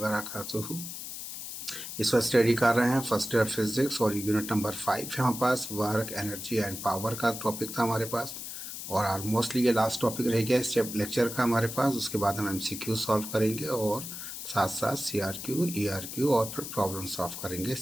इस वक्त स्टडी कर रहे हैं फर्स्ट ईयर फिजिक्स और यूनिट नंबर 5 है हमारे पास। वर्क एनर्जी एंड पावर का टॉपिक था हमारे पास और ऑलमोस्टली ये लास्ट टॉपिक रह गया इस लेक्चर का हमारे पास। उसके बाद हम एमसीक्यू सॉल्व करेंगे और साथ साथ सीआरक्यू ईआरक्यू और फिर प्रॉब्लम सॉल्व करेंगे,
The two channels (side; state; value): left; noise; hiss, 8 dB below the sound